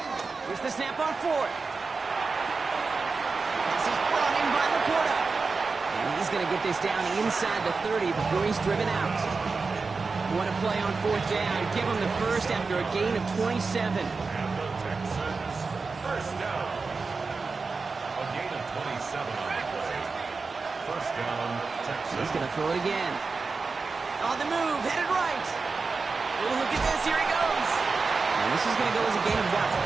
Here's the snap on 4th. This is brought in by Laporta. And he's going to get this down inside the 30 before he's driven out. What a play on 4th down. Give him the first after a gain of 27. First down. A gain of 27 on the play. First down, Texas. He's going to throw it again. On the move, headed right. Oh, look at this. Here he goes. And this is going to go as a gain of about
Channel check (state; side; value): quieter; left; 4.3 dB